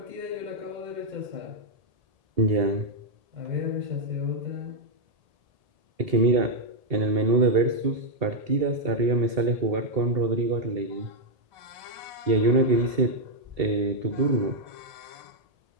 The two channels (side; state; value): left; late; 1.8 ms